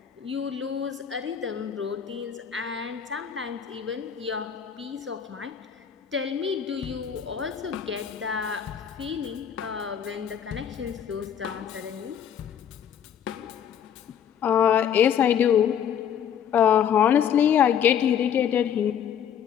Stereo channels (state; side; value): quieter; right; 8.7 dB